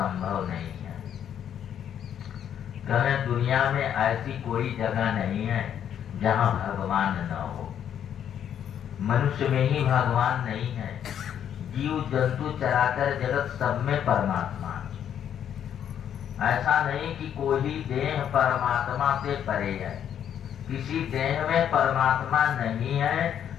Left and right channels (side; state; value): right; quieter; 9.4 dB